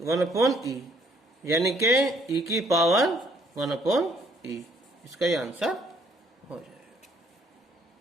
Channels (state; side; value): normal; both; correlation 0.64